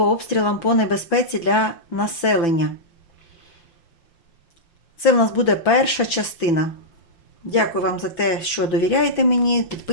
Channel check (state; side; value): late; right; 6.0 ms